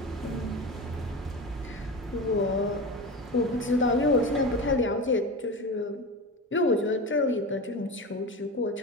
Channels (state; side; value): normal; both; correlation 0.26